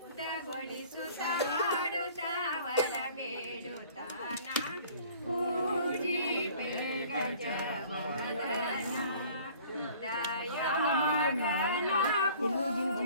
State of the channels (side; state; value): both; inverted; correlation -0.51